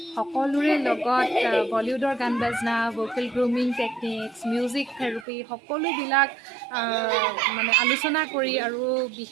সকলোৰে লগত বলিউডৰ গান বাজনা vocal grooming techniques music therapy সকলোবিলাক মানে আলোচনা কৰি আৰু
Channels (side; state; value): left; drops out; at 5.2 s